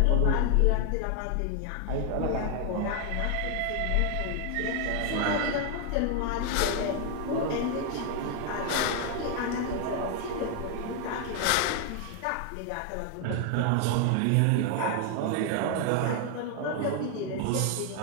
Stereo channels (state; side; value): different; both; correlation 0.00